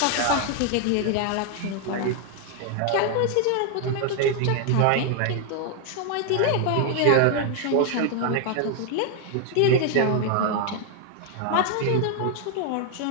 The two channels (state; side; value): different; both; correlation 0.00